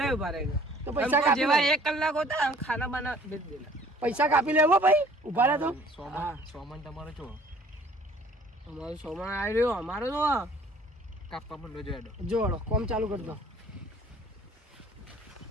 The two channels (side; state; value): both; normal; correlation 0.54